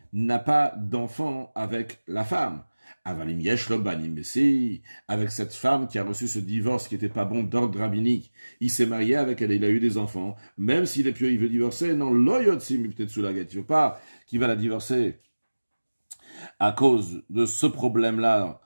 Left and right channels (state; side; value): inverted; both; correlation -1.00